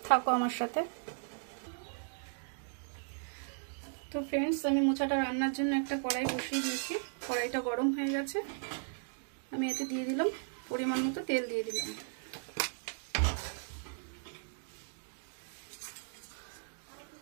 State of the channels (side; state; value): left; silent; digital silence